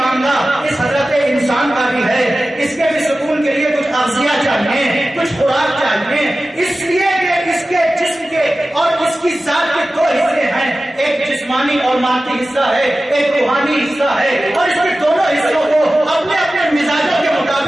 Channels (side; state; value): both; normal; correlation 0.95